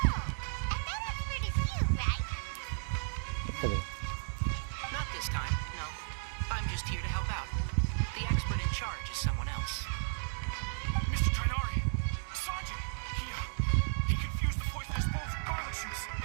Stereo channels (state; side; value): silent; left; 55 dB below the other